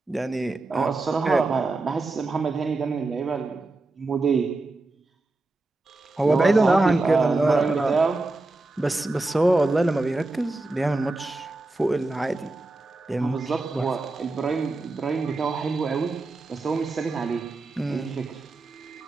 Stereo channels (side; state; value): left; quieter; 3.1 dB